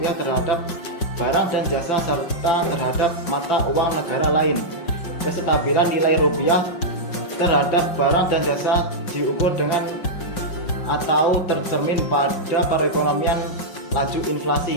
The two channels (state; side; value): late; right; 5.5 ms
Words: terhadap barang dan jasa serta terhadap mata uang negara lain. Kestabilan nilai rupiah terhadap barang dan jasa diukur dengan atau tercermin pada perekonomian laju